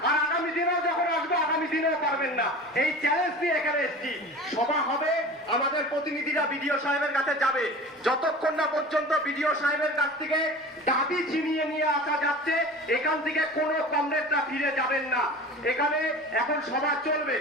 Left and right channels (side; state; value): both; normal; correlation 0.36